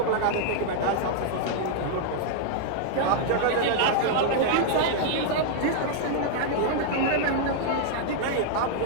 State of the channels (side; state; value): both; different; correlation -0.01